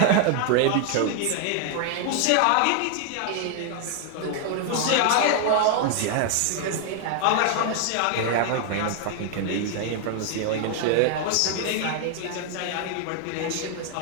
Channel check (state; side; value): different; both; correlation 0.00